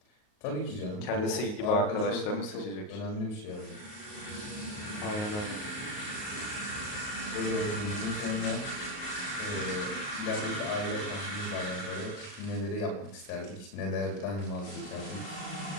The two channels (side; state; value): right; late; 38 ms